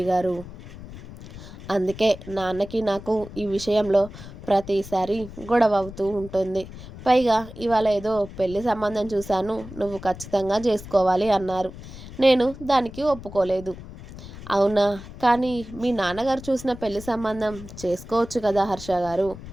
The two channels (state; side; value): noise; left; rumble, 14 dB below the sound